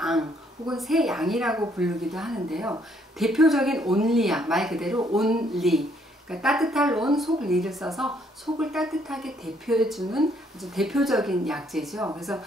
혹은 새양이라고 부르기도 하는데요. 대표적인 온리약, 말 그대로 온리, 그러니까 따뜻할 온, 속리를 써서 속을 따뜻하게 대표해주는 아주 대표적인 약재죠. 그래서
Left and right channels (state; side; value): normal; both; correlation 0.68